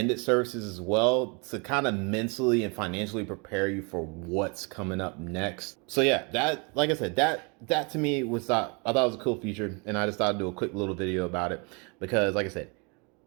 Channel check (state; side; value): quieter; left; 32.2 dB